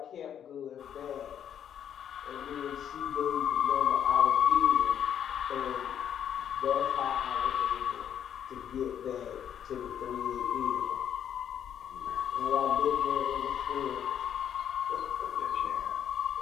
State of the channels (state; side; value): quieter; right; 9.3 dB